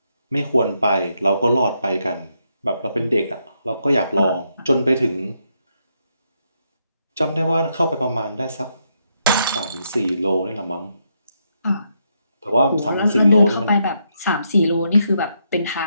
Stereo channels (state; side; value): inverted; both; correlation -0.78